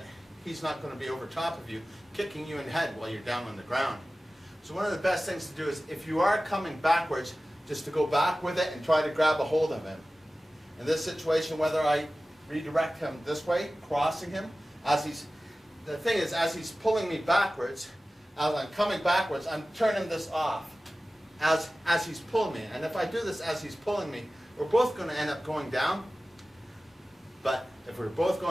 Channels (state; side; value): normal; both; correlation 0.96